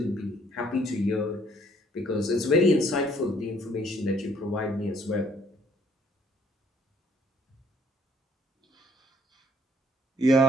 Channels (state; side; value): normal; both; correlation 0.62